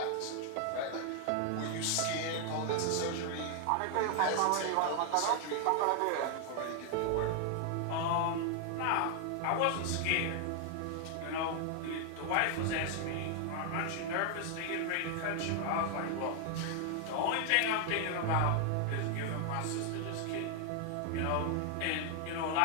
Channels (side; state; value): both; different; correlation 0.00